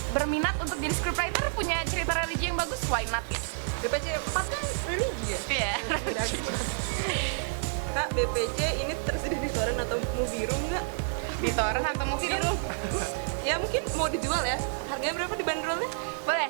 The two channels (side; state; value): left; silent; digital silence